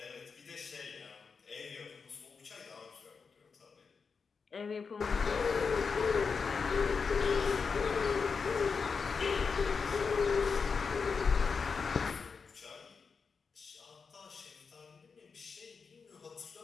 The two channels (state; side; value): quieter; right; 5.3 dB